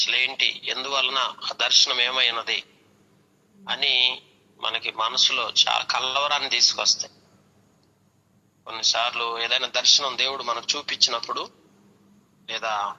ఎందువలన ఆ దర్శనం ఏమైనది అని మనకి మనసులో చాలా కలవరాన్ని తీసుకొస్తాయి. కొన్నిసార్లు ఏదైనా దర్శనం దేవుడు మనకు చూపించినప్పుడు, లేదా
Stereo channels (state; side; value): identical; both; correlation 1.00